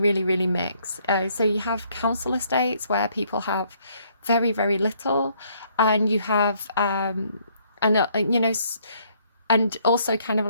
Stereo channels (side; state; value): both; inverted; correlation -0.67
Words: really mix. So you have council estates where people have very, very little, and you have and you know, and also kind of